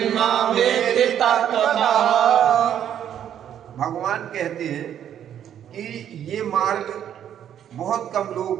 वेत्ति तत्त्वतः। भगवान कहते हैं कि ये मार्ग बहुत कम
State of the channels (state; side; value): quieter; left; 9.9 dB